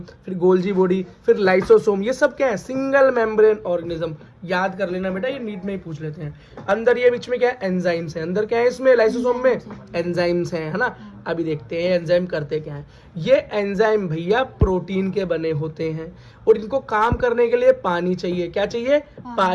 फिर गोल्जी बॉडी, फिर लाइसोसोम, ये सब क्या है? Single membrane organism. याद कर लेना बेटा, ये नीट में ही पूछ लेते हैं। अंदर ये बीच में क्या है? एंजाइम्स है। अंदर क्या है इसमें? लाइसोसोम में एंजाइम्स हैं, है ना। अभी देखते हैं एंजाइम करते क्या है। ये एंजाइम भैया प्रोटीन के बने होते हैं, और इनको काम करने के लिए पानी चाहिए। क्या चाहिए?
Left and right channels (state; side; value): identical; both; correlation 1.00